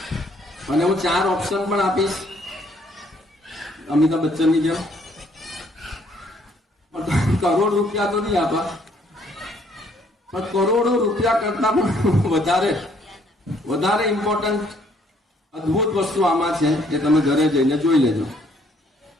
અને હું 4 ઓપ્શન પણ આપીશ અમિતાભ બચ્ચનની જેમ. કરોડ રૂપિયા તો નહીં આપા, પણ કરોડો રૂપિયા કરતા પણ વધારે ઇમ્પોર્ટન્ટ અદ્ભુત વસ્તુ આમાં છે એ તમે ઘરે જઈને જોઈ લેજો.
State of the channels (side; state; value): both; normal; correlation 0.65